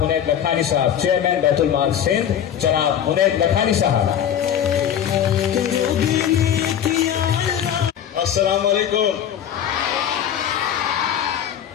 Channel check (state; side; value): quieter; right; 9.5 dB